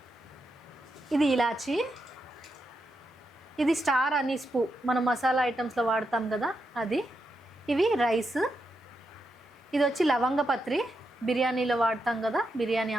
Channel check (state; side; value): normal; both; correlation 0.84